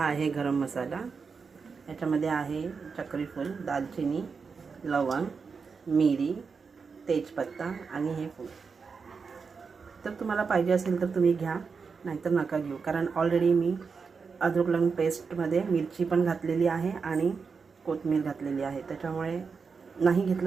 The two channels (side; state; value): left; quieter; 5.3 dB